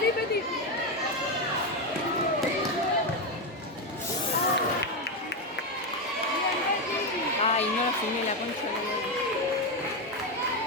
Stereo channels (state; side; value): normal; both; correlation 0.09